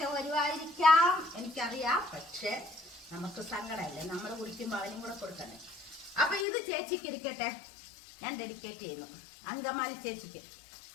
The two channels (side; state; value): right; drops out; at 6.5 s